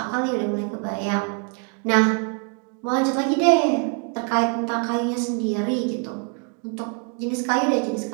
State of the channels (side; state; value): left; quieter; 37.9 dB